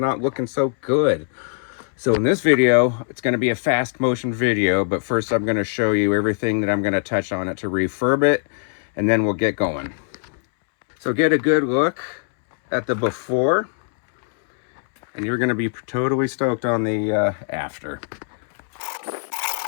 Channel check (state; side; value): silent; right; 65 dB below the other